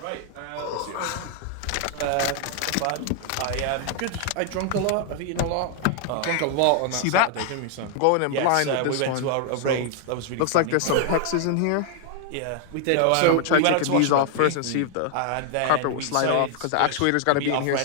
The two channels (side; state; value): both; different; correlation 0.00